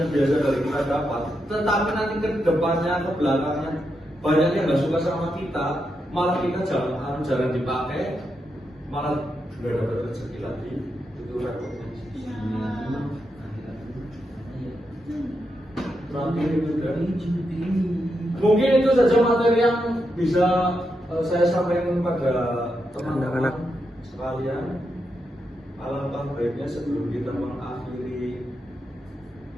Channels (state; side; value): normal; both; correlation 0.84